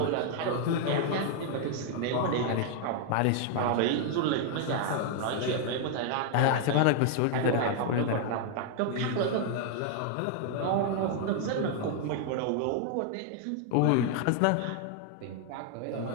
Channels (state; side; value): different; both; correlation 0.00